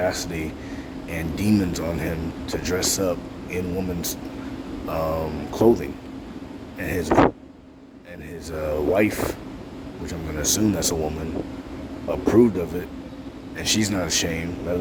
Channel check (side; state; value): both; identical; correlation 1.00